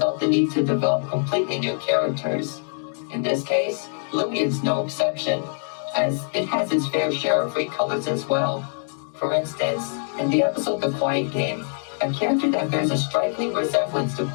the need to develop completely new characters. In this case, Bluey is no exception, as it has its fair share of recolors as well. For instance, in the episode The Quiet Game, a character that bears a striking resemblance to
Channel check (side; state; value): right; silent; digital silence